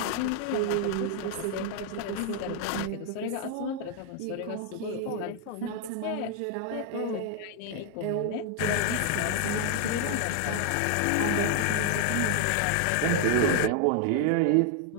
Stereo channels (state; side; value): different; both; correlation 0.00